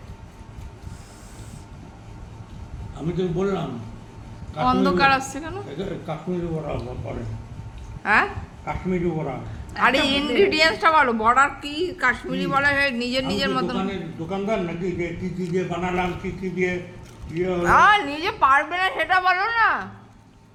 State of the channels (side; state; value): both; identical; correlation 1.00